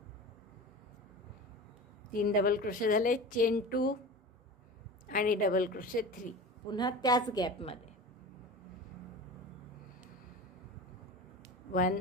3 double crochet झाले, चेन 2 आणि डबल क्रोशे 3 पुन्हा त्याच गॅपमध्ये.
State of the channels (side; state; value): both; normal; correlation 0.32